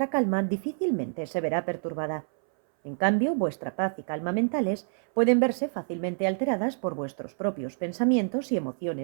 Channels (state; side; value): silent; left; 60 dB below the other